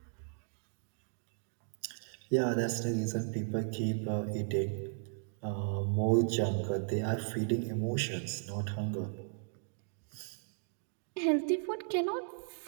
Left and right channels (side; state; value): left; silent; digital silence